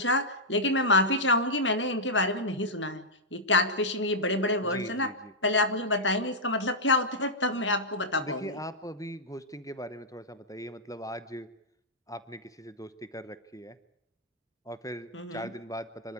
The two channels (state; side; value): normal; both; correlation -0.08